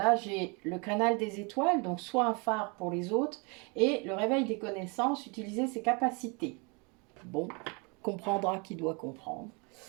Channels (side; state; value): left; quieter; 31.5 dB